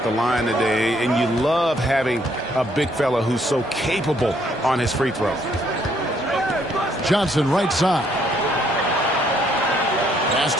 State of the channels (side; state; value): both; normal; correlation 0.68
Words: the line today, and you love having a big fella who's so capable on his free throw. Johnson right side. Pass